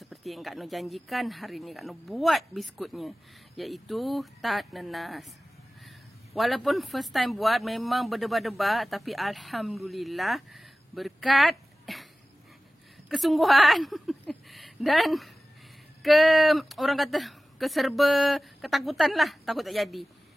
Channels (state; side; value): normal; both; correlation 0.96